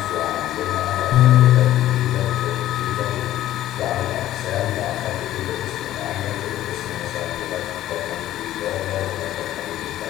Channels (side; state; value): right; quieter; 13.6 dB